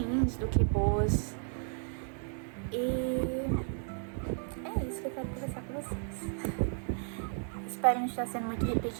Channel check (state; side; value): silent; left; 55 dB below the other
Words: do que boas. E é isso que eu quero conversar com vocês. Espero não estar sendo muito